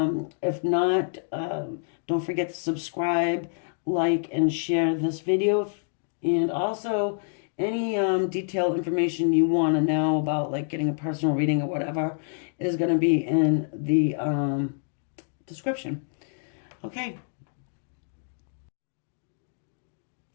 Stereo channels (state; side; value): silent; right; digital silence